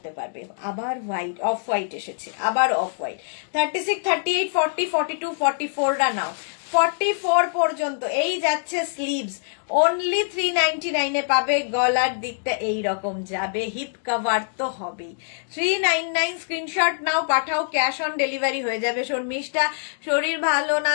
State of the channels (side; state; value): right; silent; digital silence